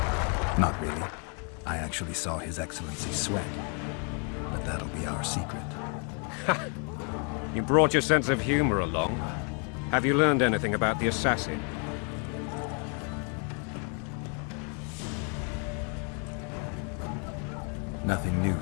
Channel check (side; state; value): right; quieter; 38.6 dB